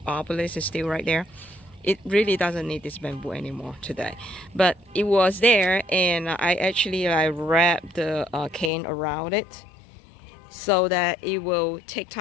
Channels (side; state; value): right; drops out; at 8.7 s